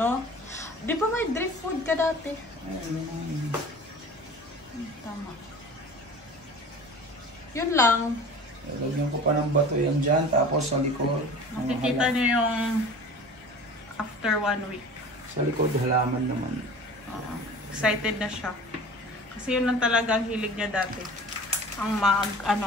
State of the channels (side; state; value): both; normal; correlation 0.40